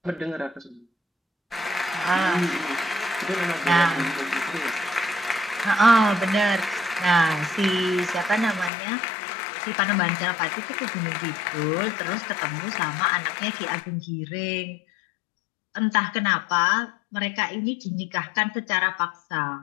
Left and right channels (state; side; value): drops out; right; at 8.7 s